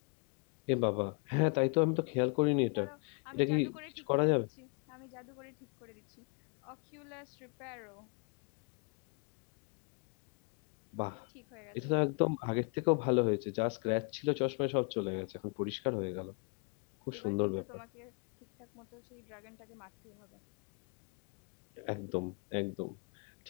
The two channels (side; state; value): right; quieter; 33.1 dB